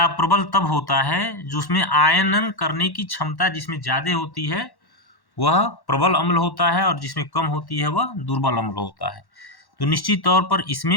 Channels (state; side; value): late; right; 1.1 ms